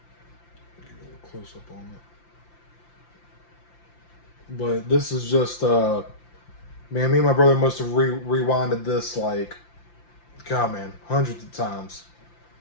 Get a little close up on it. But this is just, man, me and my brother must have rewinded this like, God, man, hundreds of times.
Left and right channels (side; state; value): right; late; 5.8 ms